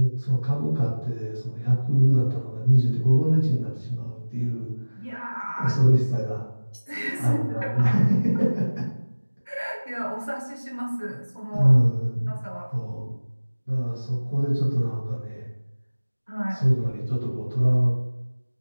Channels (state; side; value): inverted; both; correlation -1.00